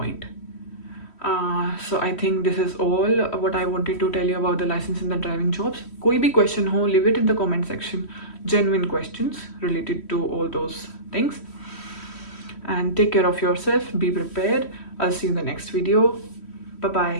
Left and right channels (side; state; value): right; late; 3.1 ms